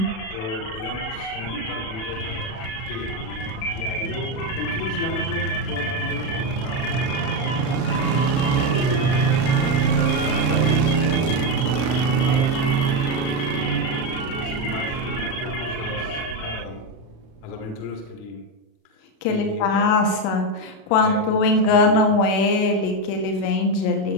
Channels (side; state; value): right; late; 36 ms